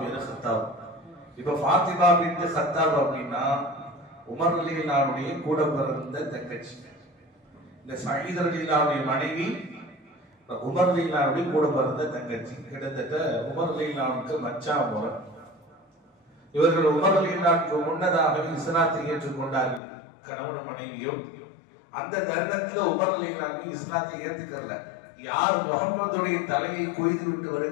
பேரு கத்தாப். இப்ப ஃபாத்திமா பின்த் கத்தாப் அப்படின்னா உமர் ரலியல்லாஹு அன்ஹுடைய கூட பிறந்த தங்கச்சி. இந்த சயீத் ரலியல்லாஹு அன்ஹுடைய மனைவி உமர் ரலியல்லாஹு அன்ஹுடைய கூட பிறந்த தங்கச்சி. கிட்டத்தட்ட உமர் ரலியல்லாஹு அன்ஹுக்கு மச்சான் முறை. இவர்கள் உமர் ரலியல்லாஹு அன்ஹுக்கு முன்னதாகவே இஸ்லாத்தை ஏற்றுக்கொண்டார்கள், கணவன் மனைவியும். அந்த தருணத்துல உமர் ரலியல்லாஹு அன்ஹு இஸ்லாத்தை ஏற்றுக்கல. யார் முஹம்மதுடைய தலையை கொய்து விட்டு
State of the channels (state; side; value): drops out; right; at 19.8 s